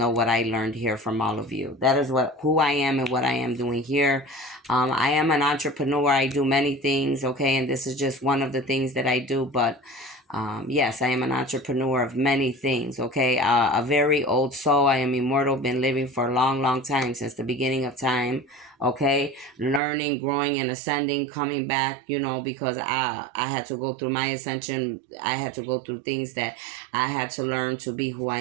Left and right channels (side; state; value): left; drops out; at 19.8 s